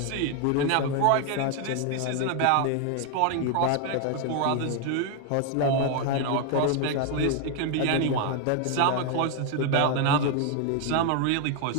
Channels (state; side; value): different; both; correlation 0.01